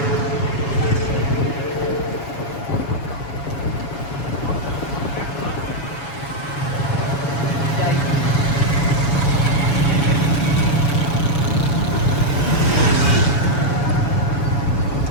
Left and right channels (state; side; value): late; right; 7.1 ms